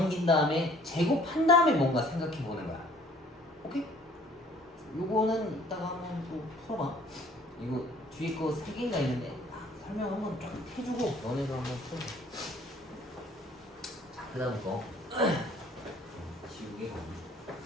다음에 제곱한 다음에 뭔가 생각해 보는 거야. 오케이? 요거는 이따가 한번 또 풀어봐. 이거 뒤에 거 3개인가 있는데 설명 한번 쫙 해주고 너네가 한번 풀어. 자, 그 다음 거 지우개 가기.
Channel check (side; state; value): both; normal; correlation 0.55